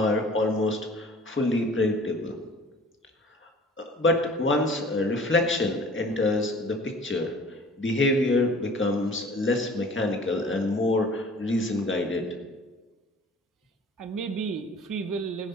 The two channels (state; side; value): normal; both; correlation 0.48